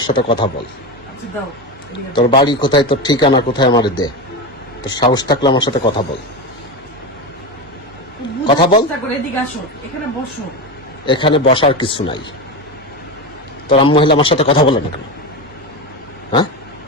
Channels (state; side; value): normal; both; correlation 0.19